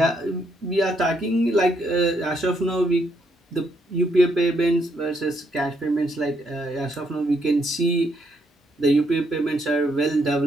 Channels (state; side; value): normal; both; correlation 0.74